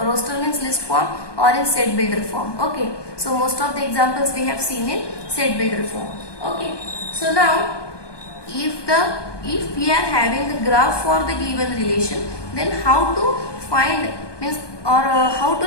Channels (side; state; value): right; late; 1.2 ms